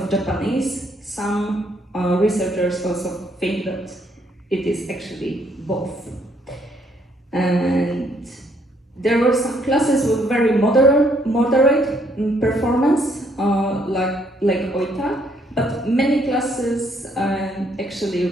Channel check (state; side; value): normal; both; correlation 0.69